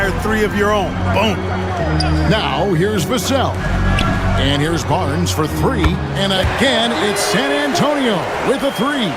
three of your own. Boom. Now here's Vassell. And here's Barnes for three. And again, it's San Antonio with a three.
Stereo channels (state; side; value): identical; both; correlation 1.00